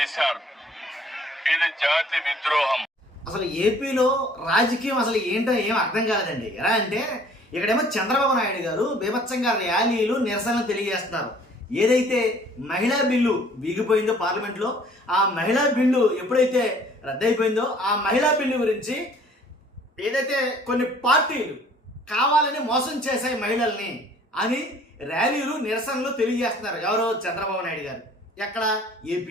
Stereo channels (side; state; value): both; normal; correlation 0.55